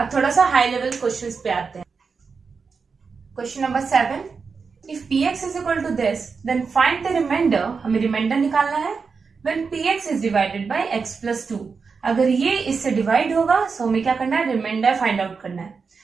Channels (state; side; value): quieter; left; 5.2 dB